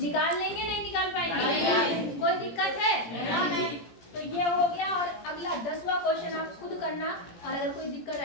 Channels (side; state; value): right; late; 18 ms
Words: लेंगे? नहीं निकाल पाएंगे? कोई दिक्कत है? नहीं। तो ये हो गया। और अगला 10वां क्वेश्चन आप खुद करना और अगर कोई दिक्कत